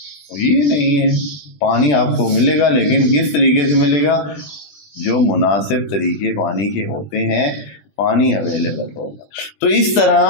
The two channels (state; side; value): late; right; 20 ms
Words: یہ نہیں ہے، پانی آپ کو ملے گا لیکن کس طریقے سے ملے گا، جو مناسب طریقے پانی کے ہوتے ہیں پانی اویلیبل ہوگا۔ تو اس طرح